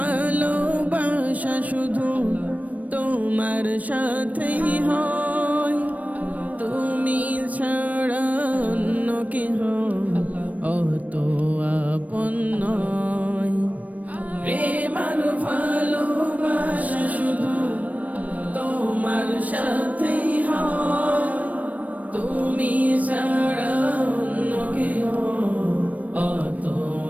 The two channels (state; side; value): late; left; 0.071 ms